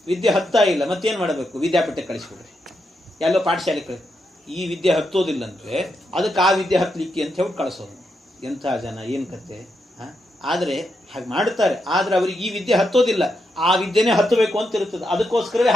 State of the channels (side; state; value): both; normal; correlation 0.83